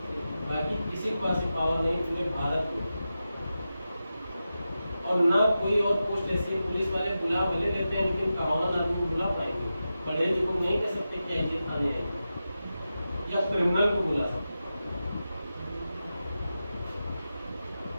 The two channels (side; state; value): both; inverted; correlation -0.92